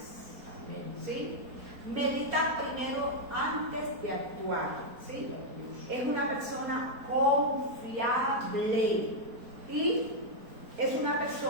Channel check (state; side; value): late; left; 4.3 ms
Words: Amén. ¿Sí? Medita primero antes de actuar. ¿Sí? Es una persona confiable y es una